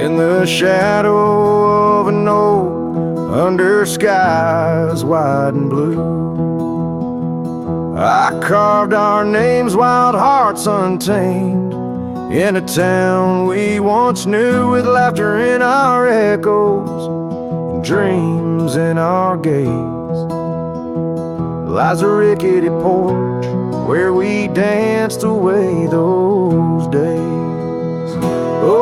In the shadow of an oak, under skies wide and blue, I carved our names, wild hearts untamed, in a town we once knew, with laughter in our echoes and dreams in our gaze. Lies a rickety porch where we danced away those days.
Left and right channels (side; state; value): both; identical; correlation 1.00